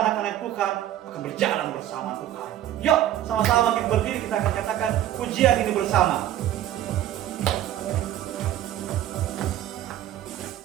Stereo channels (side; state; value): left; quieter; 12.3 dB